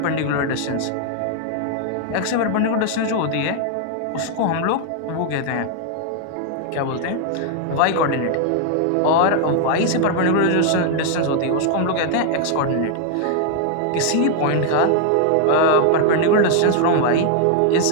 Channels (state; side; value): different; both; correlation 0.00